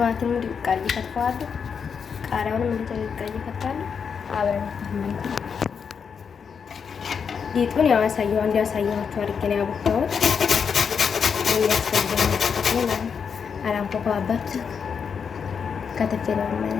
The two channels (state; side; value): quieter; right; 6.5 dB